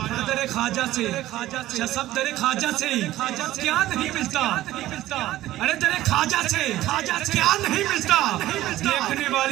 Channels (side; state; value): left; quieter; 15.1 dB